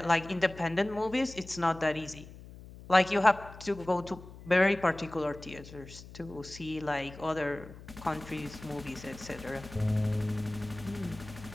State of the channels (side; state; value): left; noise; hum, 17 dB below the sound